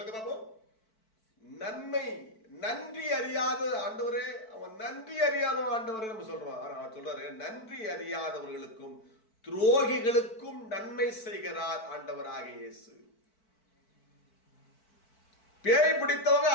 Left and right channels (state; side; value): late; right; 4.5 ms